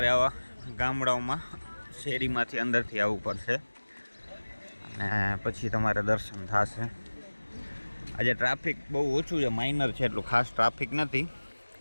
આવા ગામડાઓમાં શેરીમાંથી અંદરથી આવવું પડશે અને પછી તમારે દર્શન થશે. આજે ટ્રાફિક બહુ ઓછું છે, માઇનર છે, એટલું ખાસ ટ્રાફિક નથી.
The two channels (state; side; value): inverted; both; correlation -1.00